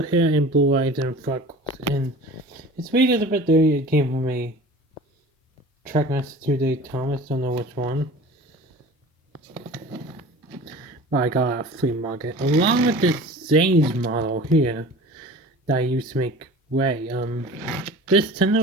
hair and blue eyes and freckles, and his weight is a bit dirty. It came from a Trackmaster Thomas, don't know which one. But I got a flea market along with this Zane's model here that I used to make Ray. This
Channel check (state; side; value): normal; both; correlation 0.40